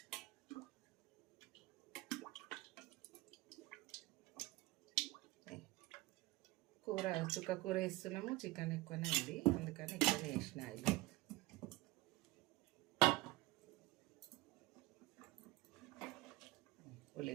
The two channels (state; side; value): quieter; left; 19.7 dB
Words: కూర చుక్కకూర వేస్తున్నాము. చికెన్ ఎక్కువనే ఉంది, అందుకని ఎక్కువనే వేసిన ఆయిల్.